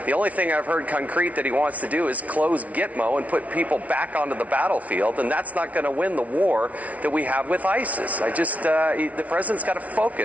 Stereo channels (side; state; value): left; late; 0.068 ms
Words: The only thing I've heard concrete that he wants to do is close Gitmo and put people back onto the battlefield, and that's not going to win the war that we have with ISIS. The president's got to